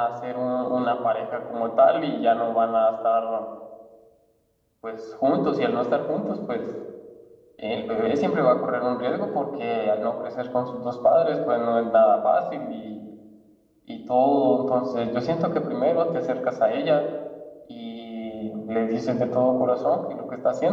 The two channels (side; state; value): both; identical; correlation 1.00